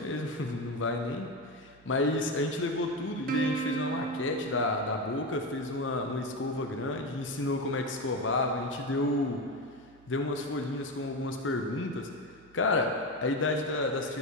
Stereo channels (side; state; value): right; noise; hum, 26 dB below the sound